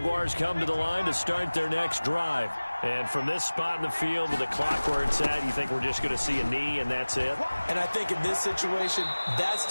come to the line to start their next drive. And from this spot in the field with the clock where it's at, you think we're just going to see a knee and that's it? And I think in this situation, that's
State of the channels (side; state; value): both; inverted; correlation -1.00